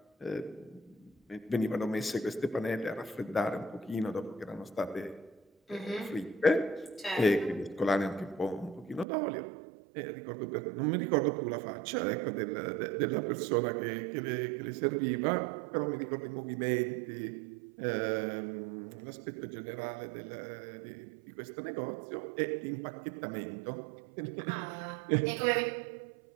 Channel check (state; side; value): drops out; left; at 9.1 s